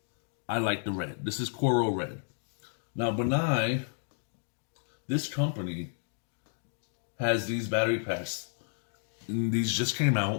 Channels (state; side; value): silent; right; 57 dB below the other